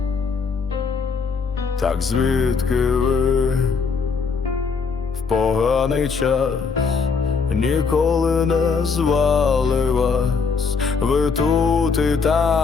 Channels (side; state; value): right; quieter; 5.2 dB